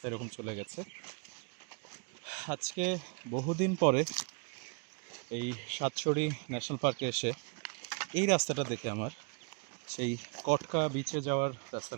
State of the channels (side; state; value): left; quieter; 35.1 dB